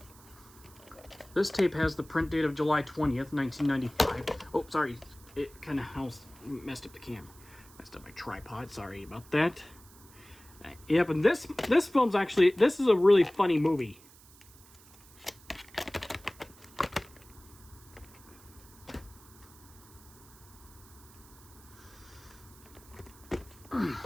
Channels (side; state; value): right; noise; hiss, 23 dB below the sound